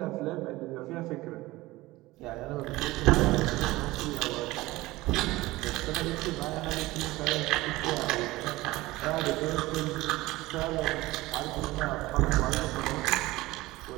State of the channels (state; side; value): quieter; left; 19.2 dB